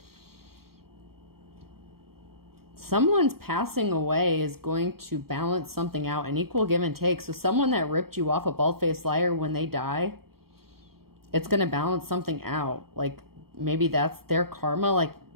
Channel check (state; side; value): late; left; 0.94 ms